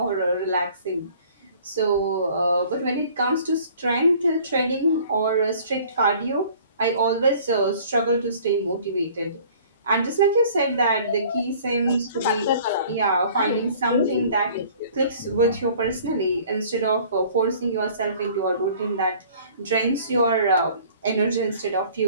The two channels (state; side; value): inverted; both; correlation -0.52